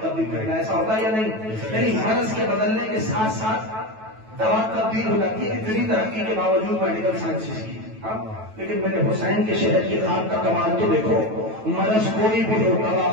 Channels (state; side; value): late; left; 9.2 ms